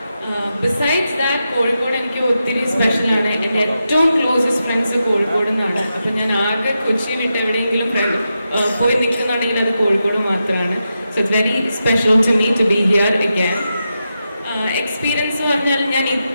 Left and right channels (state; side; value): inverted; both; correlation -0.88